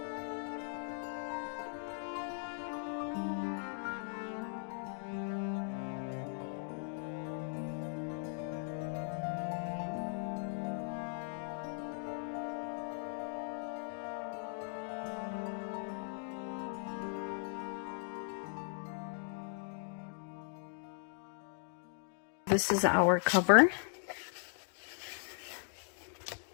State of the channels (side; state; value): right; silent; 52 dB below the other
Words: This is our cover.